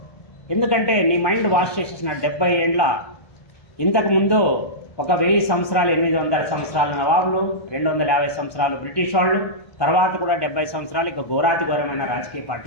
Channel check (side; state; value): right; late; 1.2 ms